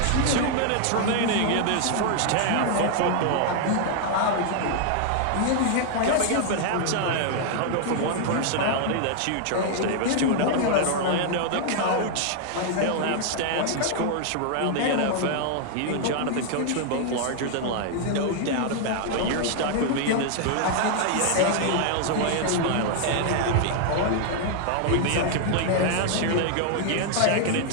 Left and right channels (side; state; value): both; different; correlation 0.00